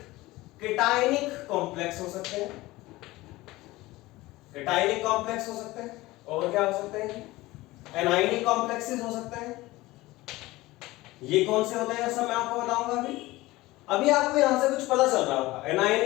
केटायनिक कॉम्प्लेक्स हो सकते हैं, केटायनिक कॉम्प्लेक्स हो सकते हैं, और क्या हो सकते हैं, एनायनिक कॉम्प्लेक्सेस हो सकते हैं। ये कौन से होते हैं सब मैं आपको बताऊंगा। अभी आपको यहां से कुछ पता चल रहा होगा,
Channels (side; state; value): right; quieter; 19.2 dB